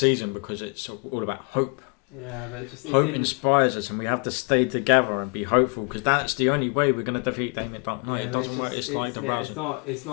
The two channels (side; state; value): right; quieter; 33.5 dB